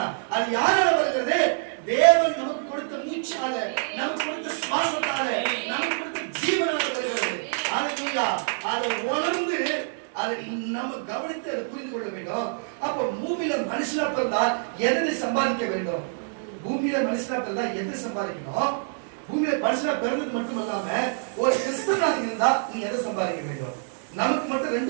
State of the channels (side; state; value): left; silent; digital silence